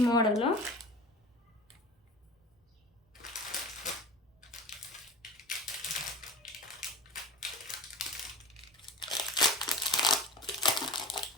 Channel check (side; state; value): both; normal; correlation 0.37